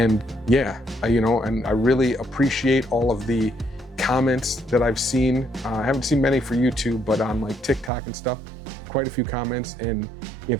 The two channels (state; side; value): drops out; left; at 7.9 s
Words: yeah, and I really appreciate all of the comments that I've seen. I haven't seen many for YouTube, but on like TikTok and stuff, quite a few comments. And